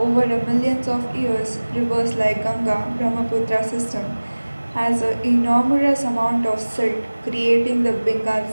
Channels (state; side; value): inverted; both; correlation -1.00